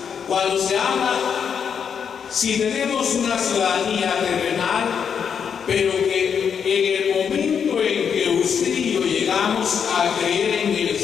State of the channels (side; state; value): right; quieter; 7.2 dB